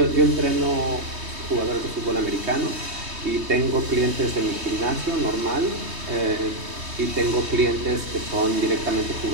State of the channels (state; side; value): late; left; 3.2 ms